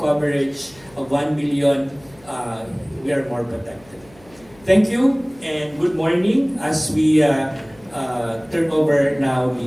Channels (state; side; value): noise; left; hum, 26 dB below the sound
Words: of 1 million, we are more protected. Thank you and good morning as we turn over now